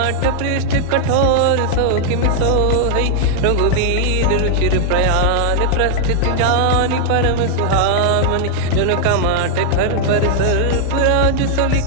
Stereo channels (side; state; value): both; different; correlation -0.01